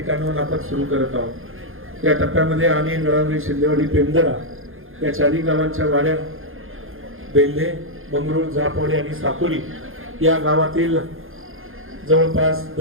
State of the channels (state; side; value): late; left; 0.60 ms